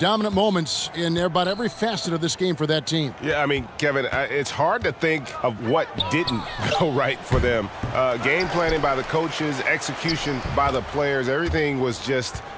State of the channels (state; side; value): identical; both; correlation 1.00